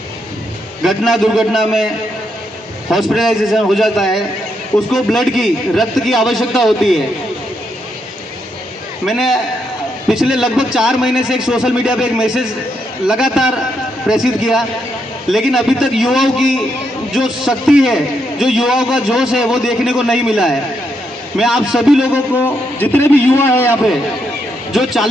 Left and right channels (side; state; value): both; normal; correlation 0.79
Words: घटना दुर्घटना में हॉस्पिटलाइजेशन हो जाता है, उसको ब्लड की, रक्त की आवश्यकता होती है। मैंने पिछले लगभग 4 महीने से एक सोशल मीडिया पे एक मैसेज लगातार प्रेषित किया, लेकिन अभी तक युवाओं की जो शक्ति है, जो युवाओं का जोश है, वो देखने को नहीं मिला है। मैं आप सभी लोगों को, जितने भी युवा हैं यहाँ पे, जो